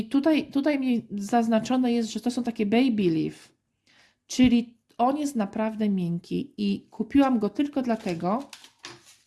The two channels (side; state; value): both; identical; correlation 1.00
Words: tutaj mi zaznaczone jest, że to są takie baby leaf, czyli on jest naprawdę miękki i kupiłam go tylko dlatego.